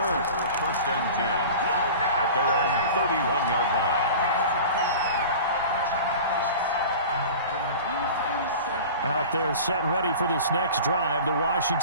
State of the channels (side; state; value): both; inverted; correlation -0.37